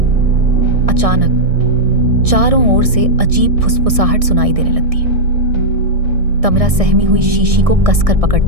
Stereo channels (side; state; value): left; late; 1.6 ms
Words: अचानक चारों ओर से अजीब फुसफुसाहट सुनाई देने लगती है। तमिरा सहमी हुई शीशी को कसकर